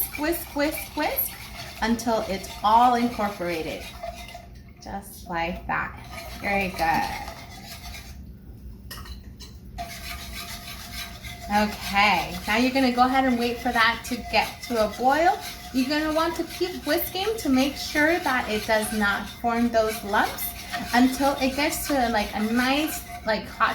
whisk, whisk, whisk until it's all incorporated. Just like that. Very good. Okay, now you're gonna go ahead and wait for that to get to a boil. You're gonna want to keep whisking to make sure that it does not form those lumps until it gets to like a nice, like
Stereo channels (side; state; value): both; identical; correlation 1.00